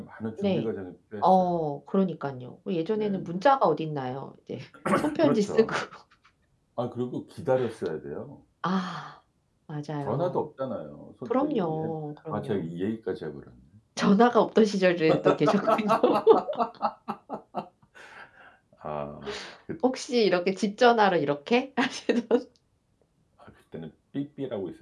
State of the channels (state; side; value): identical; both; correlation 1.00